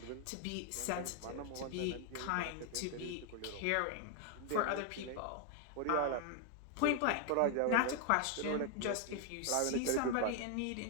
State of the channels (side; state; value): both; different; correlation 0.00